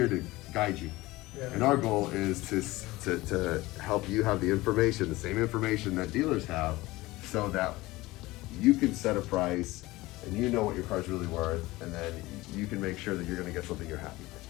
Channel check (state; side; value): quieter; right; 19.5 dB